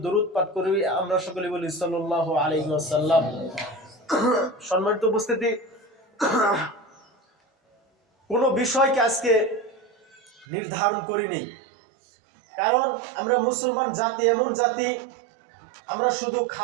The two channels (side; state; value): left; drops out; at 10.5 s